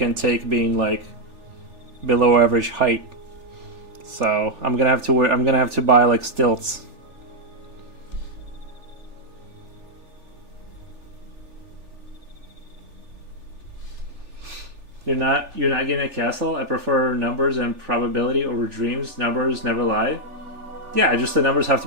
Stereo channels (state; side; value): late; left; 3.4 ms